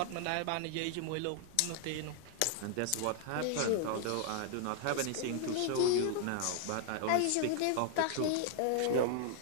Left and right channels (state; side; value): different; both; correlation 0.00